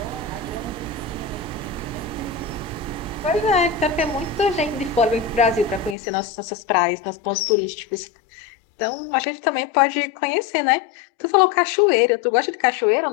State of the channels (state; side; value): drops out; right; at 6.0 s